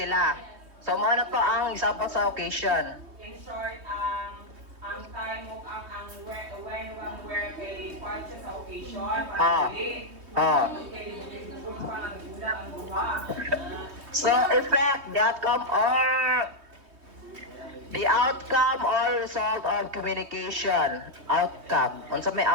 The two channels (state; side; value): late; left; 3.2 ms